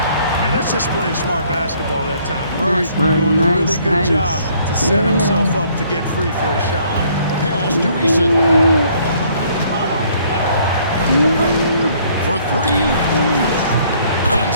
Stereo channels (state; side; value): inverted; both; correlation -0.62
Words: Yeah, that's just playing smart basketball that time. Murray Nice, Murray. doing a really Nice, good nice. job to set Yeah. himself up to get free for a shot. Pass to Eason. For 3.